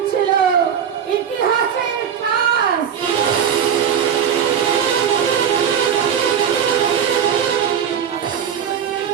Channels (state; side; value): quieter; left; 8.2 dB